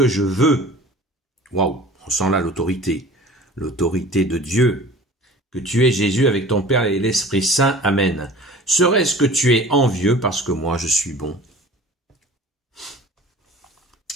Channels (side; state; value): both; normal; correlation 0.43